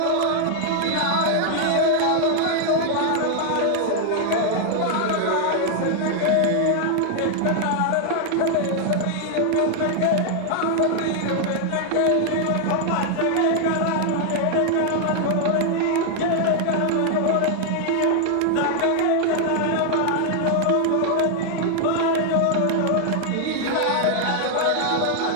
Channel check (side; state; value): both; different; correlation 0.00